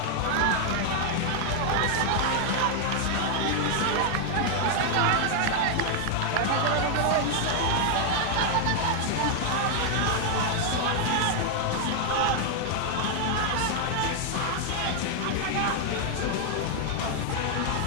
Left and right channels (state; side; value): different; both; correlation 0.00